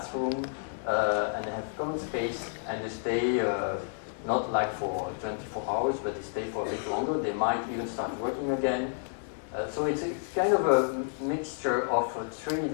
and they have common space. And they stay not like for 24 hours, but they stay for a bit longer. They might even start working again. So it's kind of a mixture of 3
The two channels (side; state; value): right; silent; 57 dB below the other